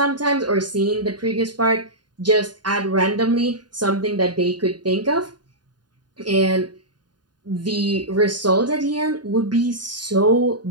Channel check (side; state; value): left; late; 0.70 ms